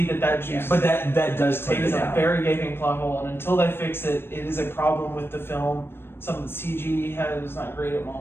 that juice. But that does take It it is a down. very gaping plot hole, and until they fix it, it is a problem with the film. Some of the CG is not great at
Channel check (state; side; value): late; right; 0.11 ms